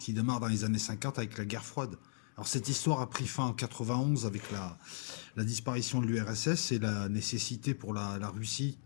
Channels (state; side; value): silent; right; digital silence